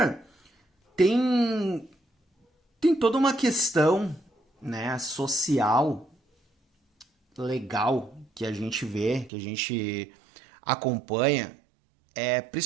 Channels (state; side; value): drops out; left; at 9.3 s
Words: tem, tem toda uma questão, né, social, legal, que a gente vê, que a gente acompanha,